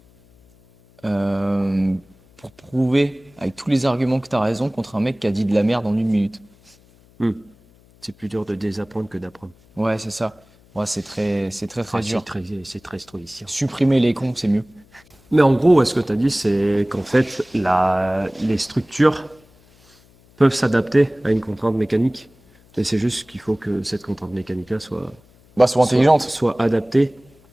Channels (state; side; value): noise; left; hum, 29 dB below the sound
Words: pour prouver avec tous les arguments que tu as raison contre un mec qui a dit de la merde en 1 minute. Hmm. C'est plus dur de désapprendre que d'apprendre. Ouais, c'est ça. Ouais, c'est très Ah, dur. c'est très stoïcien. Supprimer les cons, c'est mieux. Mais en gros, ce que tu as dit, c'est qu'en fait, les structures, peuvent s'adapter à une contrainte mécanique. Et c'est juste qu'il faut que cette contrainte mécanique-là soit, Bah, sois intelligente. soit adaptée.